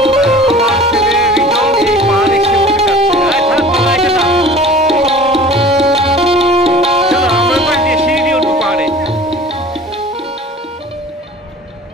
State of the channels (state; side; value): normal; both; correlation 0.43